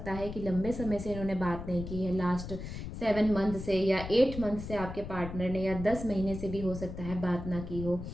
है कि लंबे समय से इन्होंने बात नहीं की है, लास्ट 7 मंथ से या 8 मंथ से आपके पार्टनर ने, या 10 महीने से भी हो सकता है बात ना की हो।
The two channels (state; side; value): noise; left; rumble, 9 dB below the sound